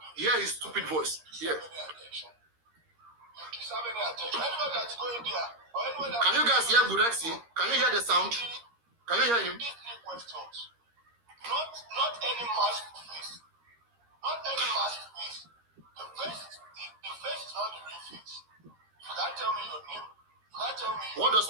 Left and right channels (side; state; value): left; late; 13 ms